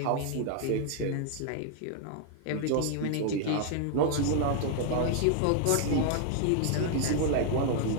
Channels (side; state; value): both; different; correlation 0.00